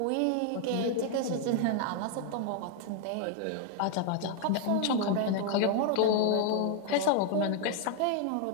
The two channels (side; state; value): both; different; correlation 0.00